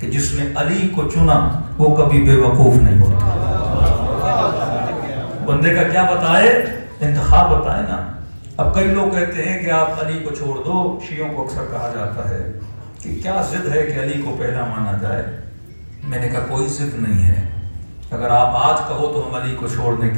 جس نے علی کو چنا وہ کبھی بے وقوف نہیں ہوتا. بندے کا کیا بتائے؟ انتخاب بتائے نا. اب کئی لوگ کہتے ہیں کہ آپ علی کو چھوڑ دو. شیعوں کو اکثر کہا جاتا ہے کہ کیا ضد ہے کہ علی کو پہلا مانا جائے. میں نے کہا کوئی ضد نہیں ہے. اگر آپ آج کہو تو ہم علی کو چھوڑنے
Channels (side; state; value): both; inverted; correlation -1.00